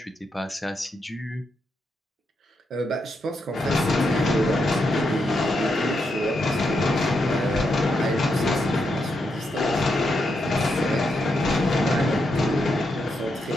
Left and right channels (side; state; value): both; normal; correlation 0.82